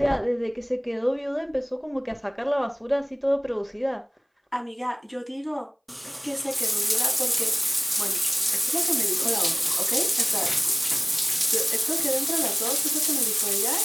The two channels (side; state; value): both; identical; correlation 1.00